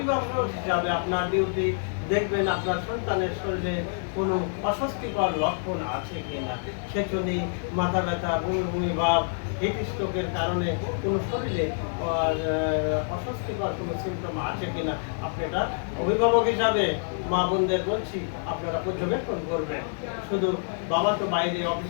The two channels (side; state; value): right; silent; 60 dB below the other